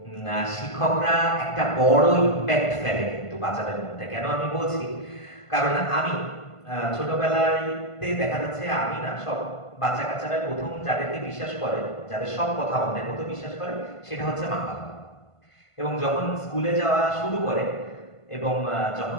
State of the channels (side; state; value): right; late; 1.5 ms